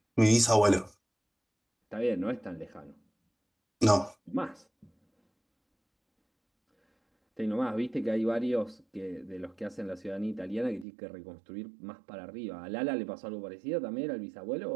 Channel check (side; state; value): left; drops out; at 10.9 s